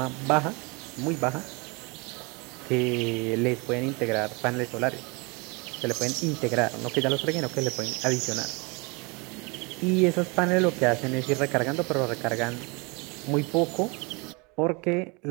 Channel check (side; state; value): left; quieter; 29.2 dB